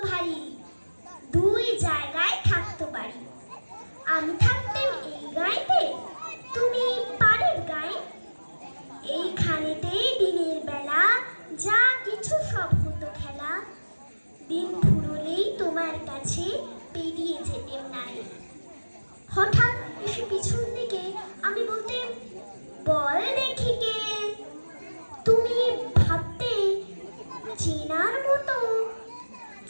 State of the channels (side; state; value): both; inverted; correlation -1.00